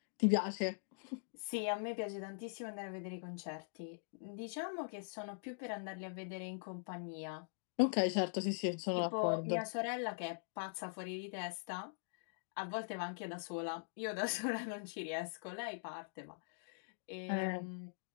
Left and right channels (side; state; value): right; silent; digital silence